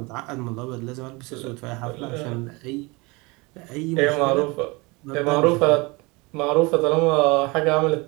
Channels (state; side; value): quieter; left; 25.8 dB